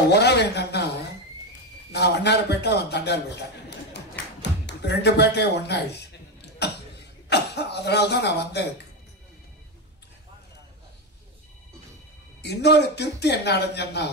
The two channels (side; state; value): both; normal; correlation 0.12